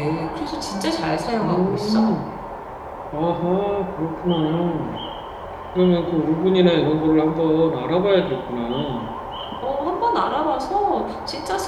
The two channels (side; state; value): both; identical; correlation 1.00